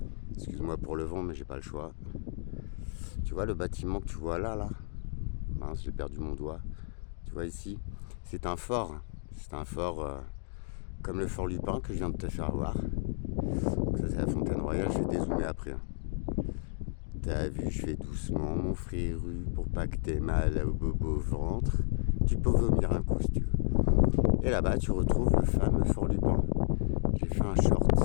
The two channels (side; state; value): right; silent; digital silence